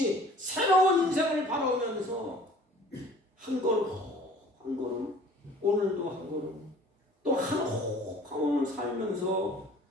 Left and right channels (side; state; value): both; normal; correlation 0.50